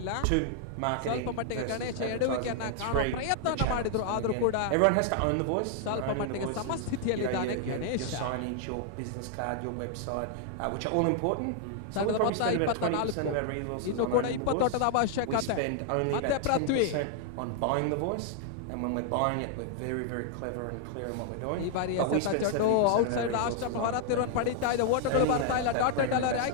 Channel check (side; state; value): both; different; correlation 0.00